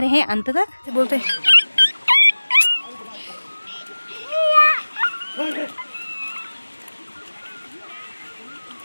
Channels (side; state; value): both; inverted; correlation -1.00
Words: रहें अंत तक। बोलते